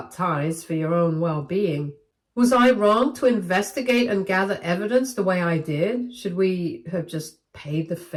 ties for your own well-being? Was I wrong to investigate and gather evidence the way I did? Should we have just paid the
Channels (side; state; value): both; identical; correlation 1.00